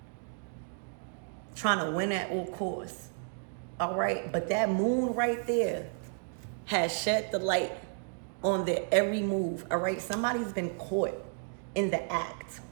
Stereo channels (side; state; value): left; silent; 56 dB below the other